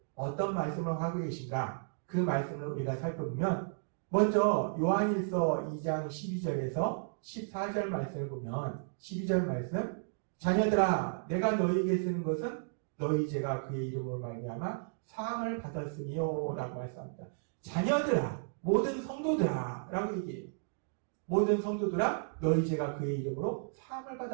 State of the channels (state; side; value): silent; left; digital silence